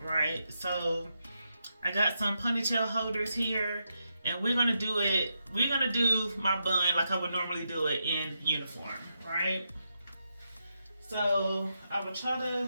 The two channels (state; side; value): inverted; both; correlation -0.84